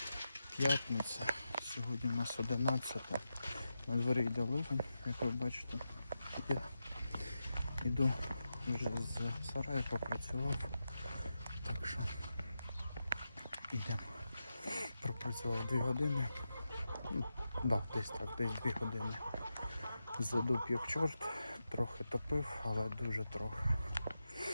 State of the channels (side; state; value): both; inverted; correlation -0.89